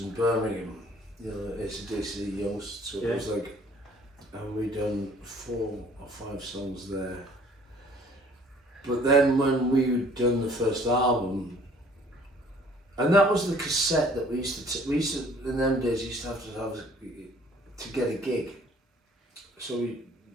in Birmingham, you know, AC/DC Youngs, so it was like, and we done 4 or 5 songs there. But then when we'd done the first album, and that was the cassette that we used to, in them days, used to have to get a gig. So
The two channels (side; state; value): both; normal; correlation 0.55